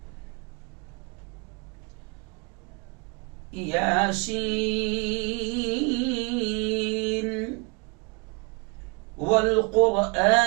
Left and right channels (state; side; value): quieter; left; 32.1 dB